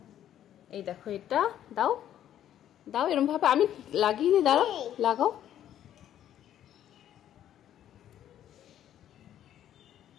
এই দেখো এটা দাও দাও এরকম ভাবে আমি লাগিয়ে দিই। দাঁড়াও লাগাও।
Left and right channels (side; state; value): right; quieter; 11.1 dB